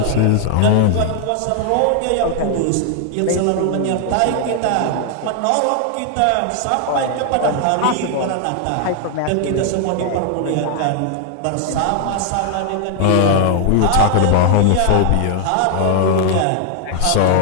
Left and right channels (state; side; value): different; both; correlation 0.00